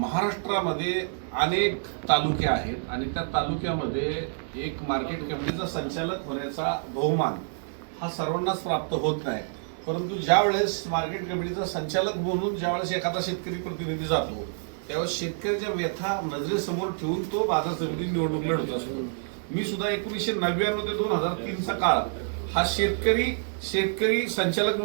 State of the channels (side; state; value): left; silent; digital silence